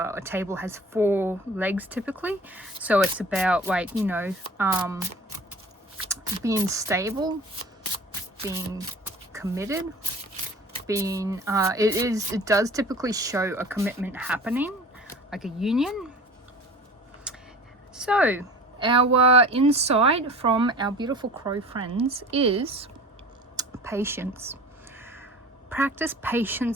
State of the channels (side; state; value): both; normal; correlation 0.41